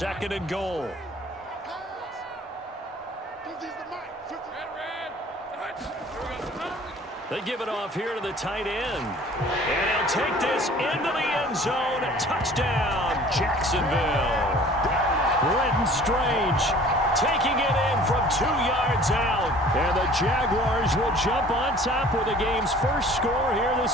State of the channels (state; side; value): normal; both; correlation 0.50